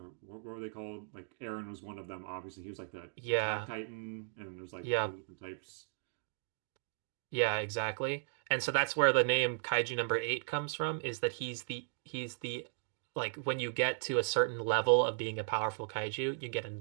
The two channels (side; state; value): left; silent; digital silence